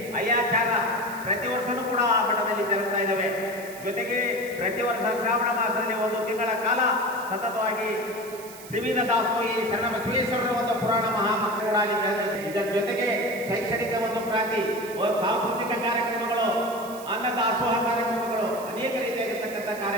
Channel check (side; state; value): right; noise; hiss, 17 dB below the sound